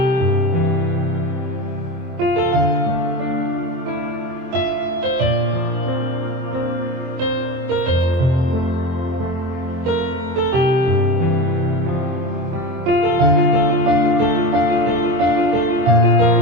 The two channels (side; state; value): left; late; 23 ms